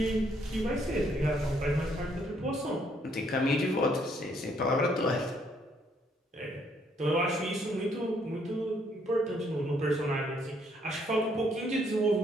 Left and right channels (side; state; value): both; normal; correlation 0.68